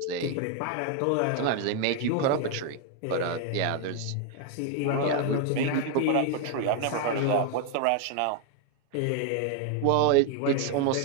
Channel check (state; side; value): different; both; correlation 0.00